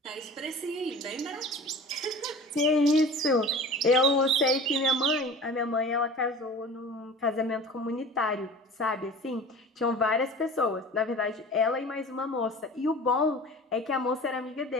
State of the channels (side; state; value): both; normal; correlation 0.39